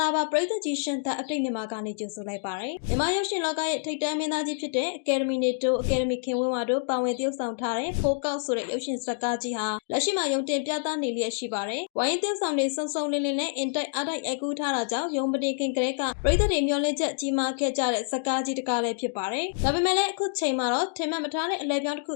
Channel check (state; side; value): silent; right; digital silence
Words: ာပါပရိသတ်ကြီးရှင်သက်အပိတ်မြန်မာကနေကြိုဆိုလိုက်ပါတယ်မြန်မာရုပ်ရှင်လောကရဲ့ထိပ်တန်းမင်းသားကြီးဖြစ်တဲ့ Academy နဲ့တွဲ Academy ခင်ဝင်းဝါတို့ပါဝင်သရုပ်ဆောင်ထားတဲ့ဖိုးကောက်ဆိုတဲ့ရုပ်ရှင်ဇာတ်ကားကြီးဟာလက်ရှိမှာရုံတင်ပြသနေလျက်ရှိပါတယ်ဝိုင်းသရုပ်ဆောင်တွေစုံစုံလင်းလင်းနဲ့အင်တိုက်အားတိုက်အကူထားတာကြောင့်ရုံပတိခင်ကလေးကပရိသတ်တွေမျှော်လင့်ချက်ကြီးမားခဲ့ကြတဲ့ဇာတ်ကားကြီးတစ်ကားလည်းဖြစ်ပါတယ်ဒါပေမဲ့လည်းအခုချိန်မှာတော့ထင်မှတ်မထားတဲ့အလဲပြောင်းတစ်ခု